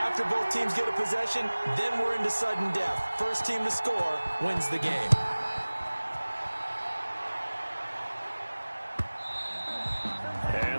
both teams get a possession, then we're into sudden death. First team to score wins the game.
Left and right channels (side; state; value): both; inverted; correlation -1.00